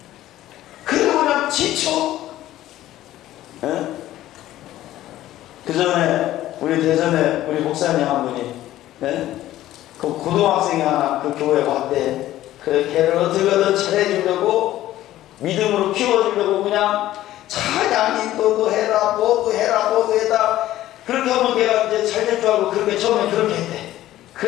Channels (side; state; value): right; quieter; 14.3 dB